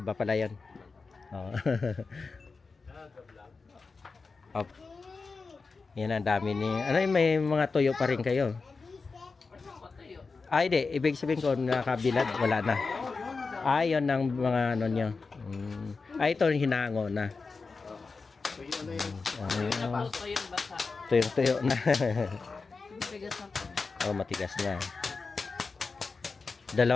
pala yun. Yan, ang dami ni, may mga tuyo pa rin kayo. Hindi, ibig sabihin ko nakabilad, wala na. Yun ang mga ano nyo. Ito hinango na. Tuyo na. Matigas na.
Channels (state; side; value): quieter; right; 4.4 dB